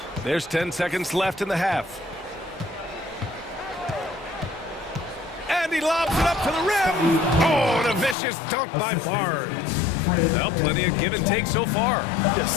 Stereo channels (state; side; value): drops out; right; at 8.2 s